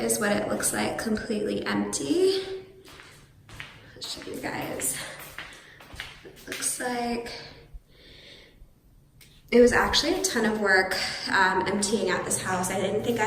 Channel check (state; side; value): identical; both; correlation 1.00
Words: is what it looks like completely empty. I'll show you guys. It looks like it was actually a ton of work emptying out this house. I didn't think I